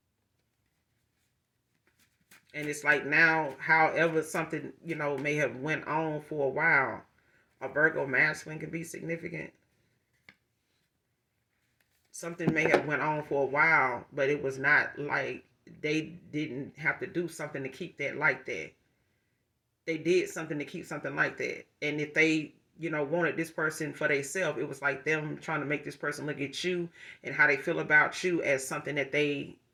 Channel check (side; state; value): both; identical; correlation 1.00